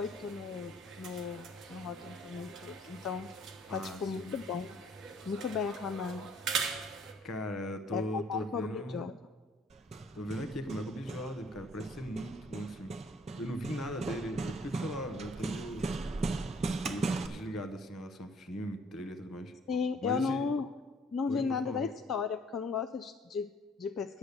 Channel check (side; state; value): both; normal; correlation 0.59